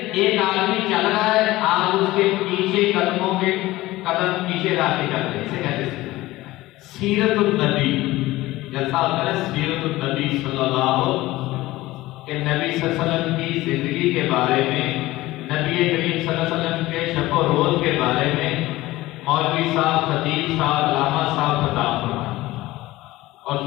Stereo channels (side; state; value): right; quieter; 17.9 dB